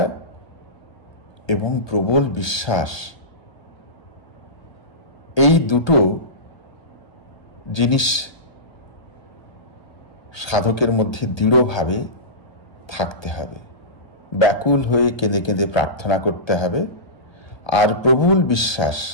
এবং প্রবল বিশ্বাস, এই দুটো জিনিস সাধকের মধ্যে দৃঢ়ভাবে থাকতে হবে। ব্যাকুল হয়ে কেঁদে কেঁদে প্রার্থনা করতে হবে, আর প্রবল বিশ্বাস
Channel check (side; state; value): right; late; 1.2 ms